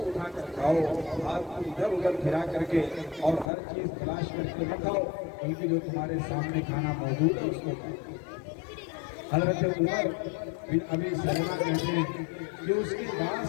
کر کھاؤ، ہاتھ کو ادھر ادھر پھرا کر کے اور ہر چیز تلاش کر کے نہ کھاؤ، بلکہ جو تمہارے سامنے کھانا موجود ہے اس کو کھاؤ. حضرت عمر بن ابی سلمہ کہتے ہیں کہ اس کے بعد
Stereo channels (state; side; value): drops out; right; at 3.5 s